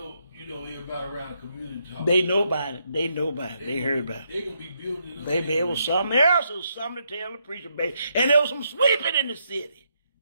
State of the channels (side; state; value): both; inverted; correlation -0.78